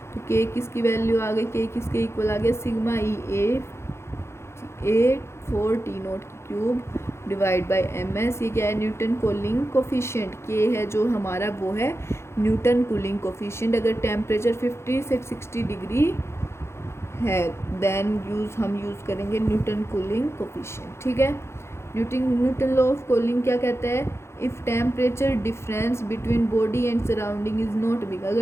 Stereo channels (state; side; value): late; right; 0.13 ms